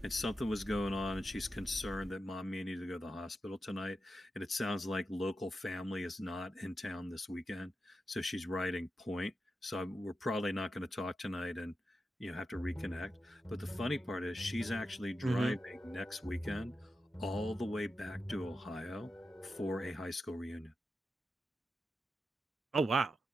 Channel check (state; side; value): normal; both; correlation 0.89